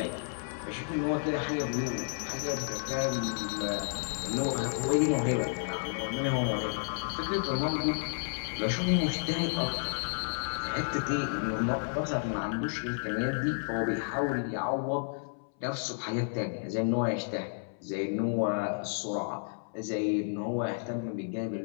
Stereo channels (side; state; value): right; silent; 57 dB below the other